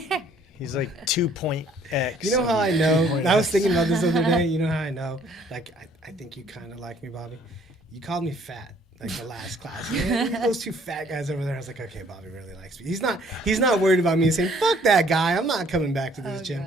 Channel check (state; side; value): normal; both; correlation 0.60